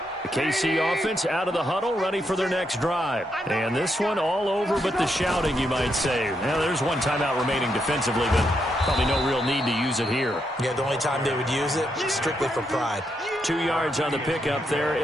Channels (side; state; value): both; normal; correlation 0.80